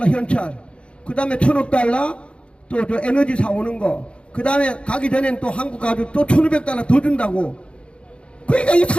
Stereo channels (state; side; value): late; right; 0.058 ms